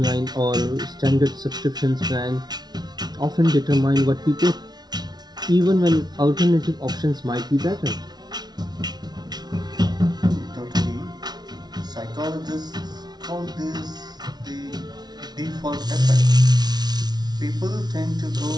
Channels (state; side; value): late; left; 0.19 ms